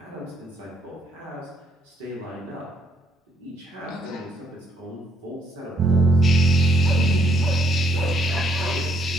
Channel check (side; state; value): both; normal; correlation 0.70